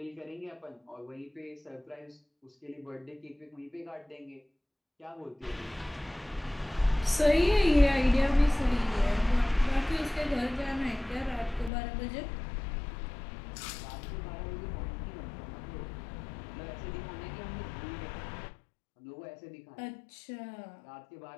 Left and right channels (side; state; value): right; drops out; at 11.7 s